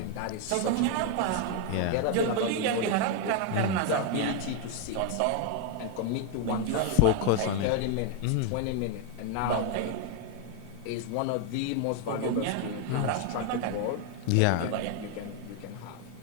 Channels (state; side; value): different; both; correlation 0.01